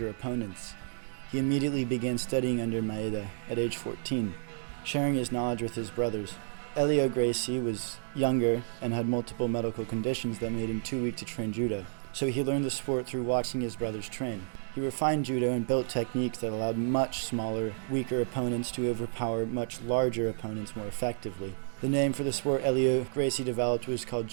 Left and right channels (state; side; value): silent; left; digital silence